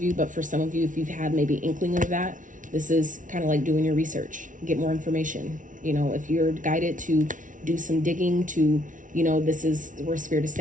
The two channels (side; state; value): left; late; 0.38 ms